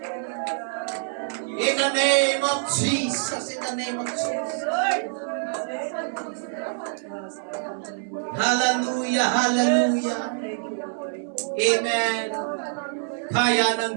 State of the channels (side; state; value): left; silent; 61 dB below the other